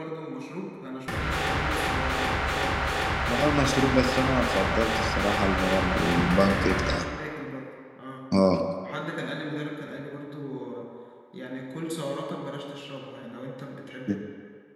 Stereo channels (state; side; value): identical; both; correlation 1.00